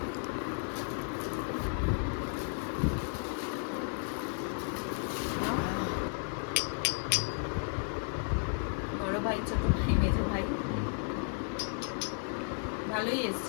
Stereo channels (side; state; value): right; silent; 55 dB below the other